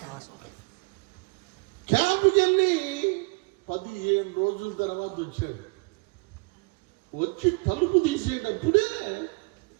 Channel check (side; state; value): left; quieter; 29.4 dB